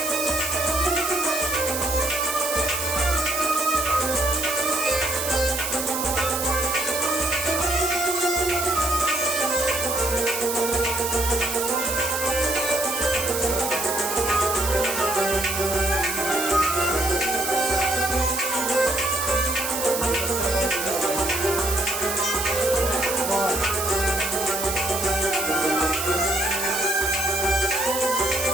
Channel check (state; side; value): noise; right; hiss, 3 dB below the sound